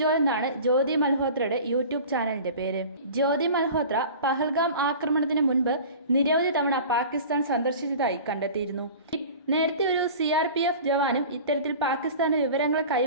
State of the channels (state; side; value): inverted; both; correlation -0.39